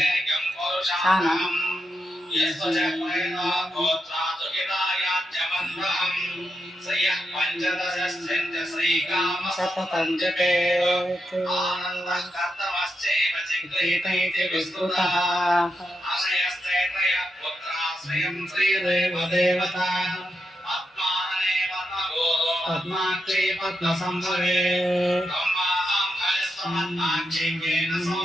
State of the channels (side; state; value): both; normal; correlation 0.85